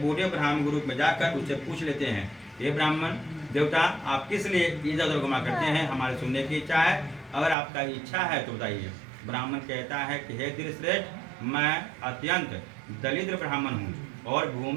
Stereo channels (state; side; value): drops out; left; at 7.6 s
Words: बूढ़े ब्राह्मण के रूप में जाकर उससे पूछ लेते हैं, ये ब्राह्मण देवता, आप किस लिए इधर उधर घुमा करते हैं, हमारे सुनने की इच्छा है, अगर आपका इच्छा है तो बताइए। ब्राह्मण कहता है कि हे धीरश्रेष्ठ, मैं अत्यंत दरिद्र ब्राह्मण हूँ और